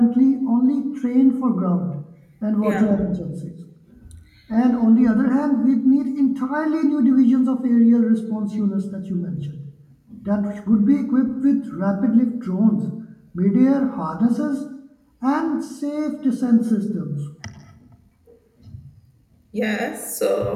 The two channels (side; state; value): both; identical; correlation 1.00